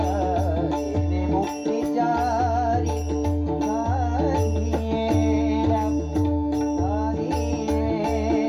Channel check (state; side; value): identical; both; correlation 1.00